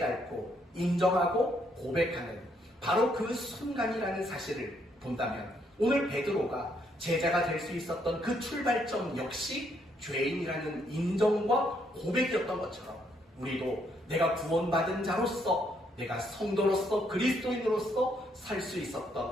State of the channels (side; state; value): both; normal; correlation 0.73